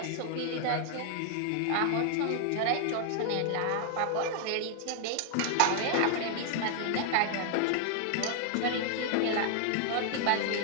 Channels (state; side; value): different; both; correlation 0.00